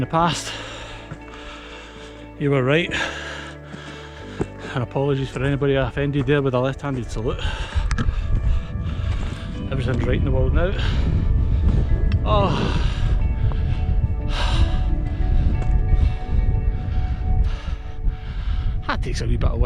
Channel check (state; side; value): identical; both; correlation 1.00